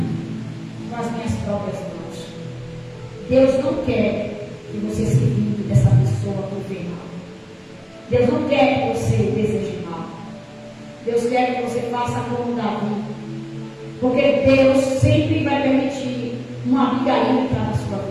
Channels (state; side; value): identical; both; correlation 1.00